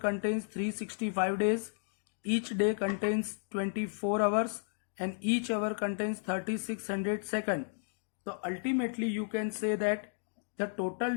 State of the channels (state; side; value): silent; right; digital silence